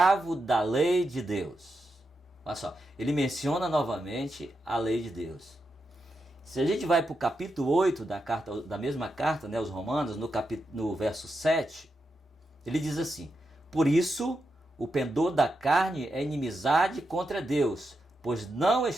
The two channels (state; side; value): normal; both; correlation 0.86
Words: da lei de Deus. Olha só, ele menciona novamente a lei de Deus. Se a gente vai para o capítulo 8 da mesma carta, né, aos Romanos, no verso 7, ele diz assim: por isso, o pendor da carne é inimizade contra Deus, pois não